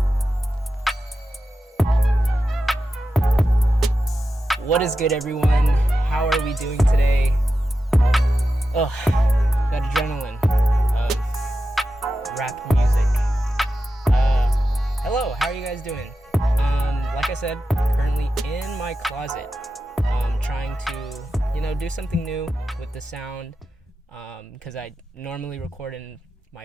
is good, everyone? How are we doing today? Ugh, that adrenaline of rap music. Hello, how are you guys doing? Like I said, currently in my closet, trying to, do something new with the sound, because I normally record in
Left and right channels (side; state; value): both; normal; correlation 0.91